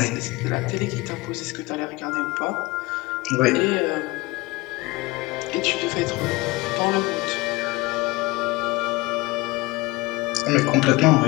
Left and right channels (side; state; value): right; quieter; 21.8 dB